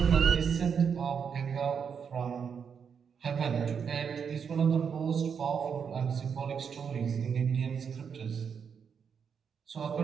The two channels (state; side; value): quieter; left; 6.8 dB